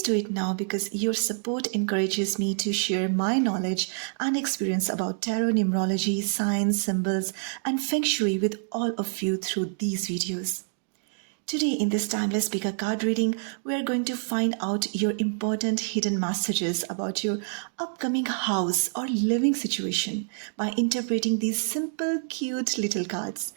do it now because your support encourages me to share my knowledge and experience about tarot, numerology, signs, symbols, and feng shui with all of you through these videos. Today, in this timeless speaker card reading, we are going to find out your important hidden messages about your upcoming house or living situation by interpreting these simple, cute little cards.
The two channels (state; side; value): silent; left; digital silence